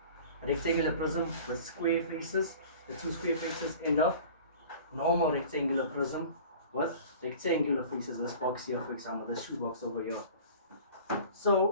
rectangular prism with square faces, the two square faces, and a normal rectangular prism with rectangular faces. This box here, for example, this shoe box over here.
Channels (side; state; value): both; inverted; correlation -0.43